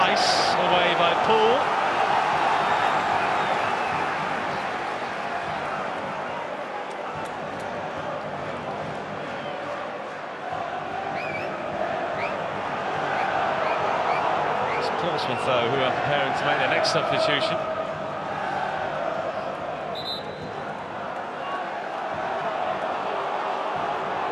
away by Poole. Portsmouth, though, who are preparing to make their next substitution.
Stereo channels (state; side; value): identical; both; correlation 1.00